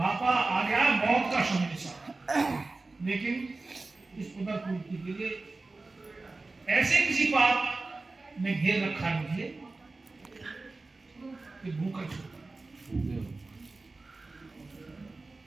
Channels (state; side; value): quieter; left; 3.4 dB